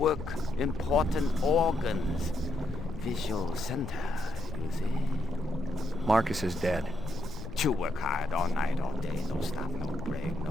important organs. Visual center, you see? Marcus is dead. To work hard all night, all day, no stop, no break,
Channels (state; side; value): noise; left; rumble, 9 dB below the sound